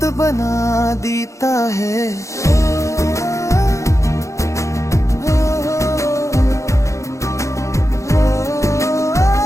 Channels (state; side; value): late; right; 0.15 ms